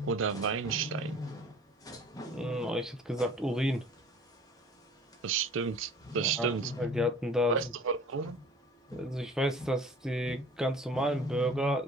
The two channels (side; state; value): both; normal; correlation 0.47